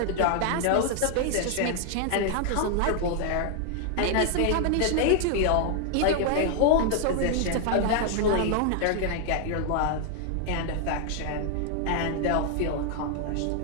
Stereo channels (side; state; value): both; different; correlation 0.00